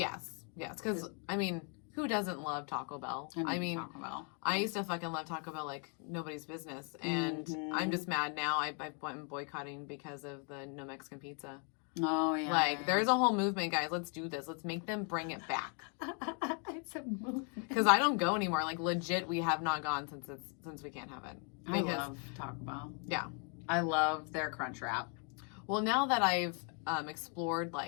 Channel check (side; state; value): right; quieter; 39.5 dB